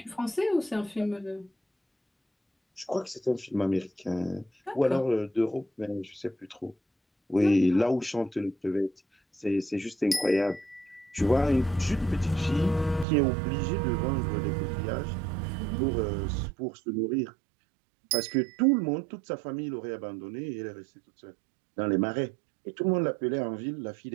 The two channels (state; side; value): drops out; left; at 13.1 s